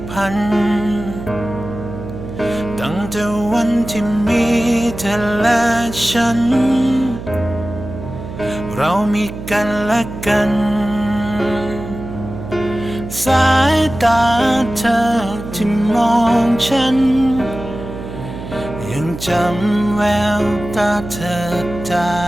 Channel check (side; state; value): right; noise; hum, 10 dB below the sound